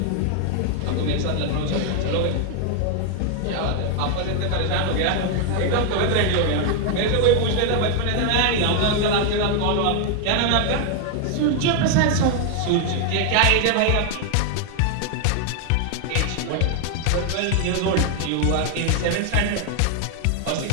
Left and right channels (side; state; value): both; different; correlation 0.00